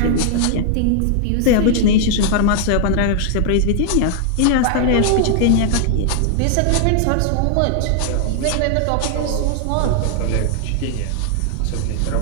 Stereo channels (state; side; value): different; both; correlation -0.01